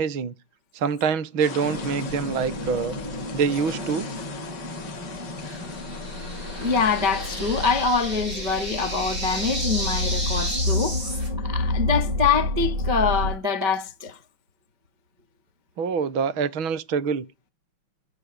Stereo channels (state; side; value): late; left; 5.8 ms